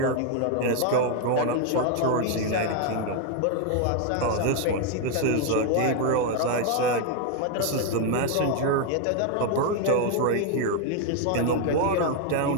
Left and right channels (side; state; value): both; different; correlation 0.01